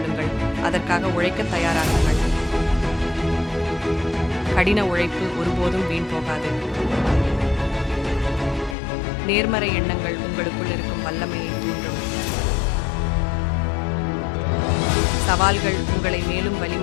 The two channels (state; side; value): drops out; right; at 8.8 s